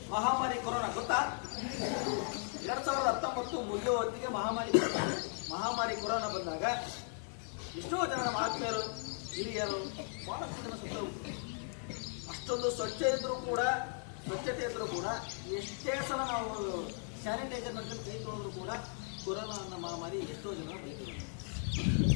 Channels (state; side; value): silent; right; 53 dB below the other